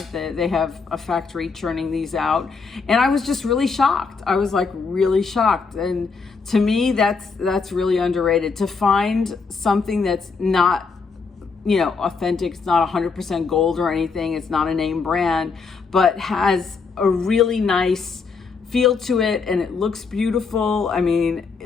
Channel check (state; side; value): quieter; right; 4.9 dB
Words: They have a factory churning these out. And I was just really shocked. I was like really shocked. And to me, that's really underrated. To find something that's not, authentic, it's not 100% gold or anything, it's not a name brand, but has a really nice feel to it and it looks beautiful. I mean,